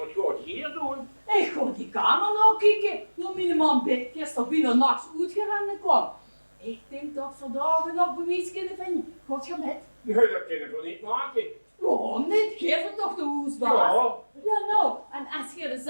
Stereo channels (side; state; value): both; inverted; correlation -1.00